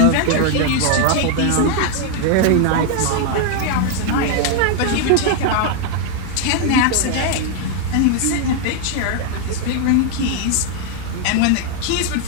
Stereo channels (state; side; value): different; both; correlation 0.01